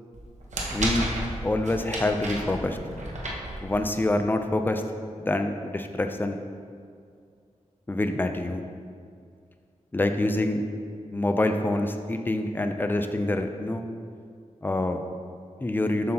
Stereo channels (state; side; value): normal; both; correlation 0.85